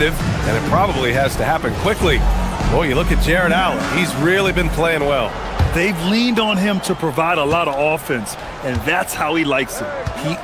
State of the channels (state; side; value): identical; both; correlation 1.00